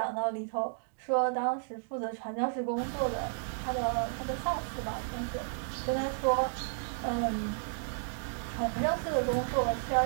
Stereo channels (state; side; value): silent; left; digital silence